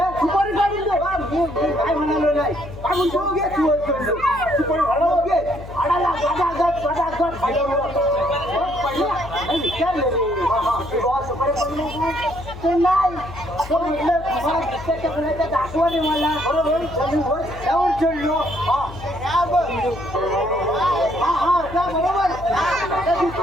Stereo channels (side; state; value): left; noise; hum, 14 dB below the sound